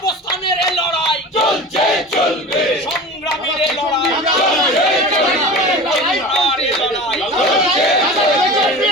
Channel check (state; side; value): normal; both; correlation 0.34